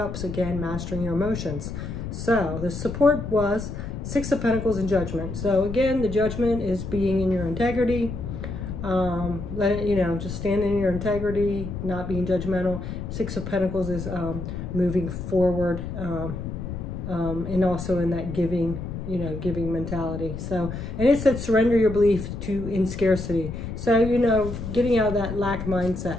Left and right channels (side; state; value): left; noise; rumble, 7 dB below the sound